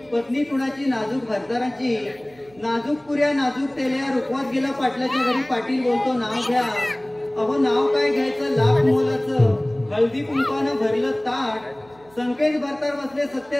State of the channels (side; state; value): right; noise; hum, 29 dB below the sound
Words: पत्नी कुणाची नाजूक भरदाराची नाजूक पुऱ्या नाजूक तेल्या रुखवात गेला पाटलाच्या घरी पाटील बोलतो नाव घ्या. अहो नाव काय घ्यायचं लाख मोलाचं हळदी कुंकानं भरलं ताट संकेत भरतार बसले